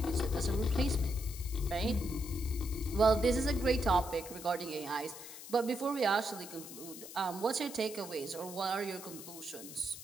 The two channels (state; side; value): noise; left; hiss, 13 dB below the sound